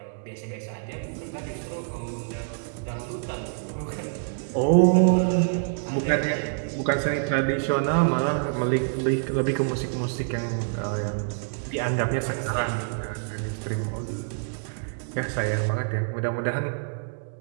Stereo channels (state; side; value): silent; left; digital silence